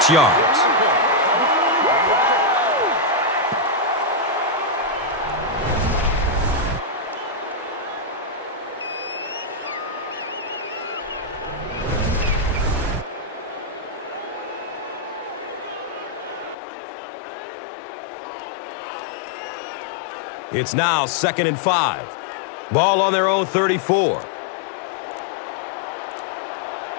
yards. It's now 2nd and 5. Ball on their own 34.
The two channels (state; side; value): drops out; right; at 16.6 s